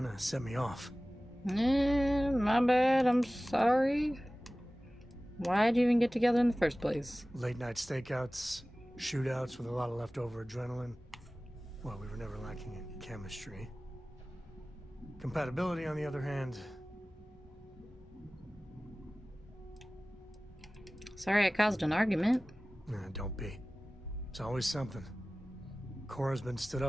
of set me off. My bad. I'm sorry. Why'd you even get together in the first place? Late night stakeouts, shootouts with a lot of leftover adrenaline. Well, we were never lacking in chemistry. Compatibility, on the other hand... Sorry I caused an argument. Nah, don't be. It's always something. Cora's been stood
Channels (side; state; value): both; normal; correlation 0.97